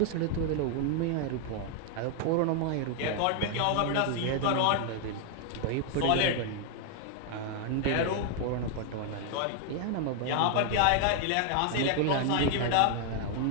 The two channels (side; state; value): both; different; correlation 0.00